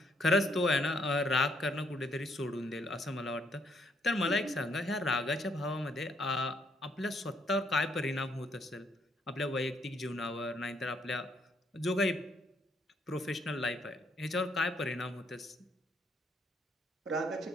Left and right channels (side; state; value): both; normal; correlation 0.71